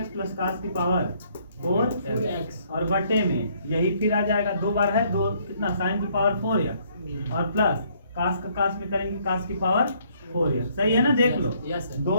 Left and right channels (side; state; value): both; inverted; correlation -0.66